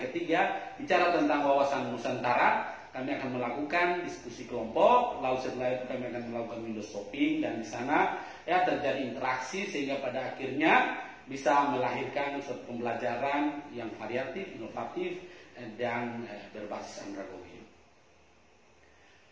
bicara tentang wawasan Nusantara, kami akan melakukan diskusi kelompok, lalu setelah itu kami akan melakukan window shopping, dan di sana ya terjadi interaksi sehingga pada akhirnya bisa melahirkan suatu pembelajaran yang variatif, inovatif, dan berbasis andragogi.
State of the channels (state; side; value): identical; both; correlation 1.00